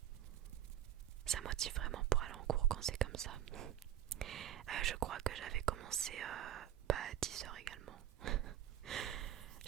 Ça motive vraiment pour aller en cours quand c'est comme ça. Je crois que j'avais commencé à 10h également.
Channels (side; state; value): left; quieter; 11.5 dB